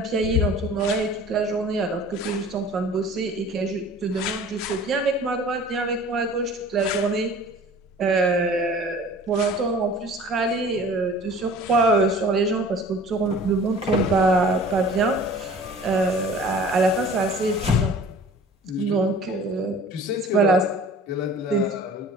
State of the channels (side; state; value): both; normal; correlation 0.46